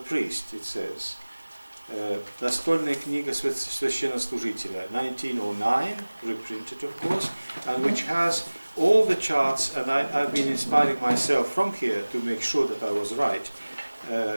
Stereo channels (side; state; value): both; inverted; correlation -1.00